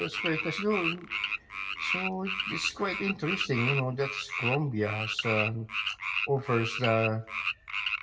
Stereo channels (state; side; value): identical; both; correlation 1.00